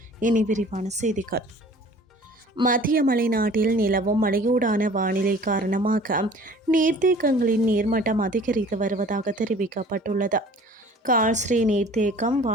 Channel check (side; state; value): both; normal; correlation 0.48